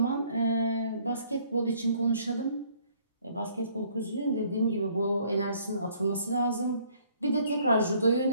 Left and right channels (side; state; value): both; inverted; correlation -0.62